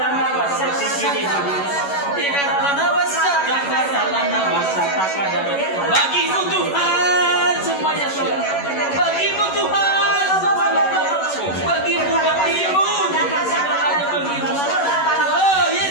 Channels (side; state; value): right; late; 11 ms